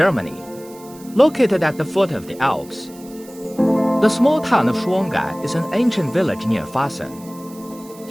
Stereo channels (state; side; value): noise; right; hiss, 22 dB below the sound